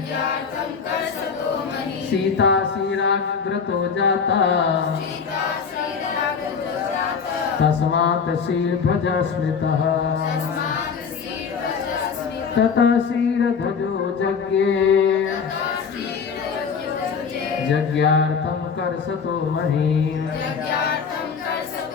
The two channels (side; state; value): right; quieter; 6.0 dB